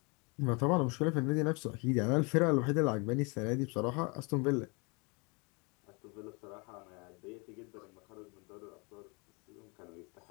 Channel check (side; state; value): right; quieter; 30.6 dB